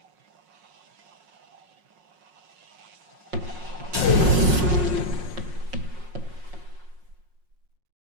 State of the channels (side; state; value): left; late; 5.5 ms